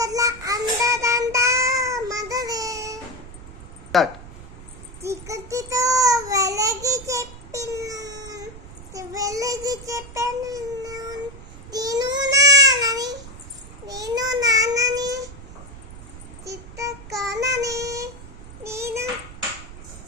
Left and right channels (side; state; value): right; noise; rumble, 15 dB below the sound